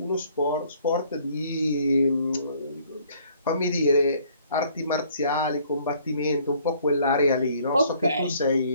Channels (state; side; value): inverted; both; correlation -0.60